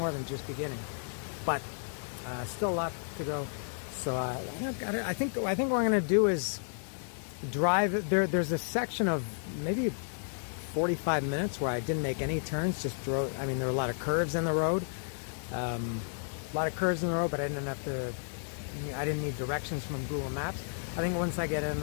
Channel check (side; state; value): right; silent; digital silence